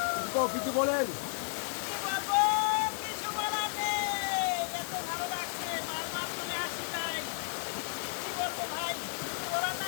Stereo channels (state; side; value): silent; right; digital silence